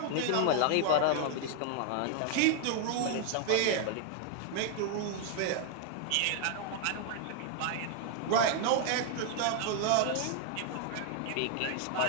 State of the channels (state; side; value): different; both; correlation 0.00